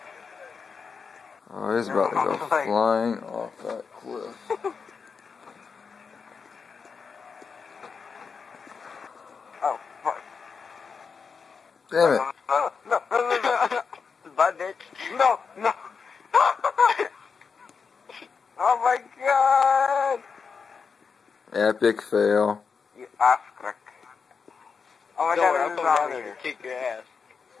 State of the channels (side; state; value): right; quieter; 5.6 dB